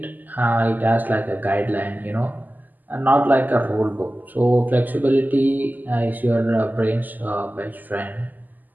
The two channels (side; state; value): left; late; 0.084 ms